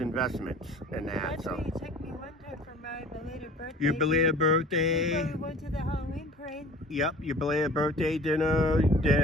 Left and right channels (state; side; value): normal; both; correlation 0.45